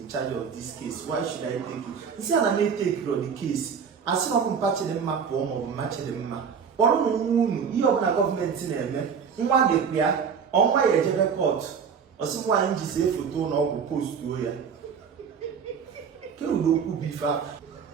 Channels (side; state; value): left; quieter; 6.6 dB